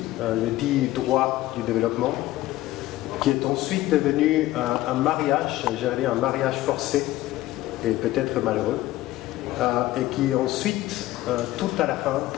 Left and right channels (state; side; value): quieter; right; 16.2 dB